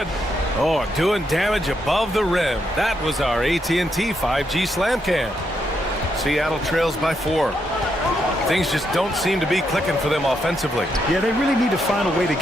Oh, doing damage above the rim. That was our AT&T 5G slam cam. Seattle trails by 4. Things just don't seem to be clicking for them offensively. Yeah, they really need to find a way to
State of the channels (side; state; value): both; normal; correlation 0.79